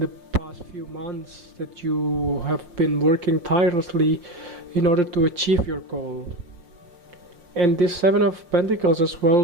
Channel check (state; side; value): late; left; 5.6 ms